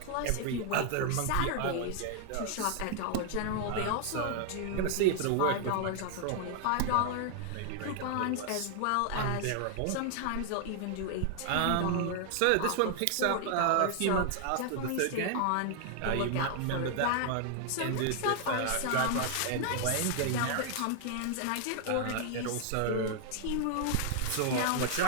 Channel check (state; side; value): different; both; correlation 0.00